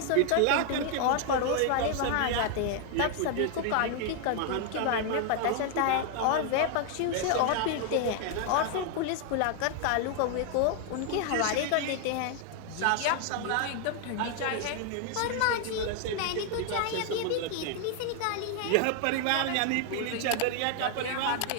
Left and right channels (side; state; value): both; different; correlation 0.00